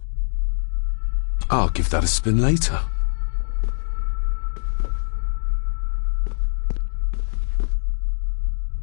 I'll give that a spin later.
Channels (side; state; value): right; silent; digital silence